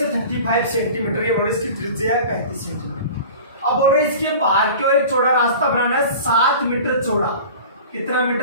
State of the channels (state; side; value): inverted; both; correlation -0.39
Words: है 35 सेंटीमीटर, ये बोल रहे इसकी त्रिज्या है 35 सेंटीमीटर। अब बोल रहे इसके बाहर की ओर एक चौड़ा रास्ता बनाना है 7 मीटर चौड़ा। कितना